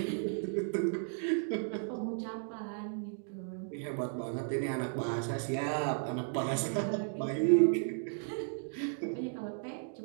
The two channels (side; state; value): left; silent; digital silence